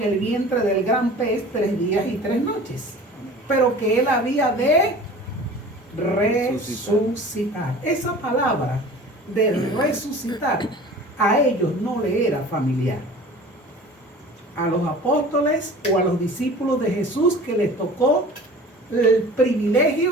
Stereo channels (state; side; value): normal; both; correlation 0.42